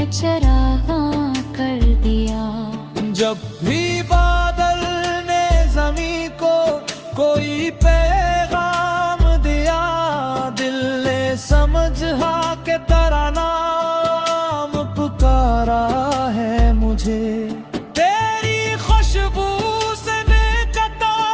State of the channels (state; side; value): identical; both; correlation 1.00